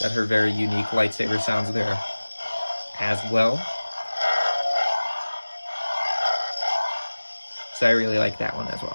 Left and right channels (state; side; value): inverted; both; correlation -1.00